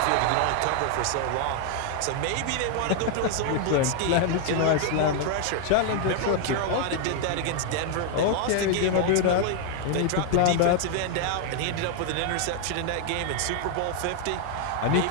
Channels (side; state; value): both; different; correlation 0.00